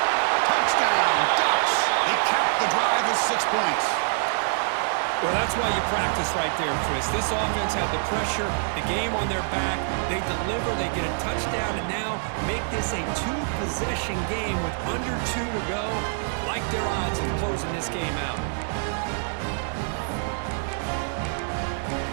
Touchdown, Ducks! They cap the drive with 6 points. Well, that's why you practice right there, Chris. This offense had the pressure, the game on their back. They deliver, they get a touchdown, and now make this a 2-possession game with under 2 to go. Like their odds in closing this game out.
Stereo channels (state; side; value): silent; left; digital silence